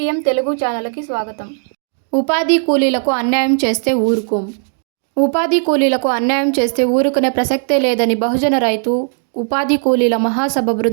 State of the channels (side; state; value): left; silent; digital silence